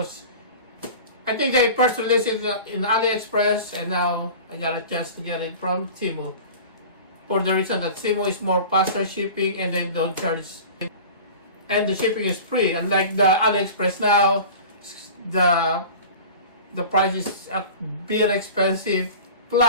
I think they first released it in AliExpress, and now I got a chance to get it from Temu, for the reason that Temu is more faster shipping and then don't charge, and the shipping is free. Unlike the AliExpress now, the price is a bit expensive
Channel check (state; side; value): inverted; both; correlation -0.38